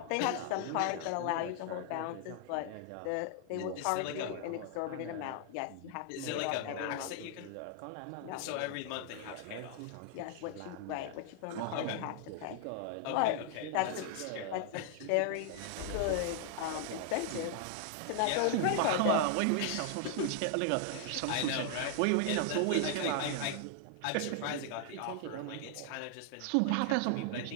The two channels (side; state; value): both; different; correlation 0.00